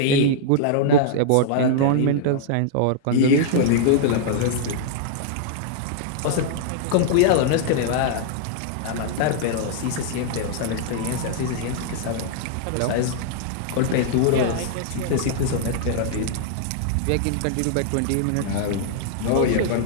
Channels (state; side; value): different; both; correlation -0.01